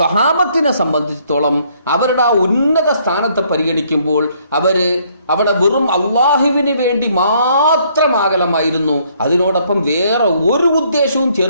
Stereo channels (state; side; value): inverted; both; correlation -0.66